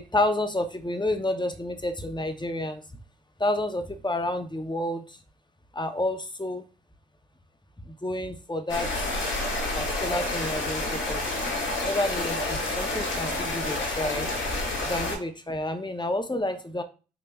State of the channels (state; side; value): normal; both; correlation 0.50